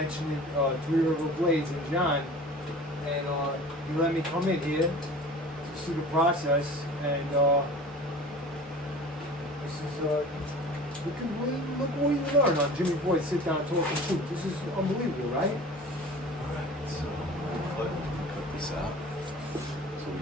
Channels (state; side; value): normal; both; correlation 0.41